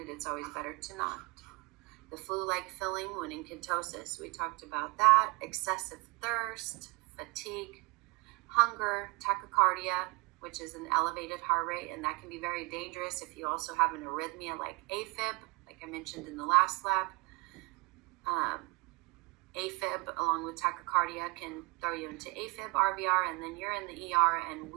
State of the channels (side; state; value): left; quieter; 26.3 dB